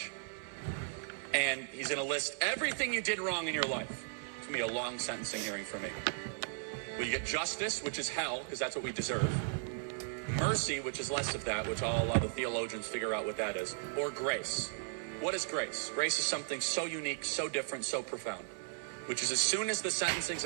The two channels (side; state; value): left; silent; 54 dB below the other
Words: and he's going to list everything you did wrong in your life. It's going to be a long sentencing hearing for me. Will you get justice, which is hell, because that's what we deserve. Mercy, which is less of that, which I'll allow the theologians figure out what that is. Or grace. What is grace? Grace is something so unique, so different, so profound. Which is as soon as the sentencing's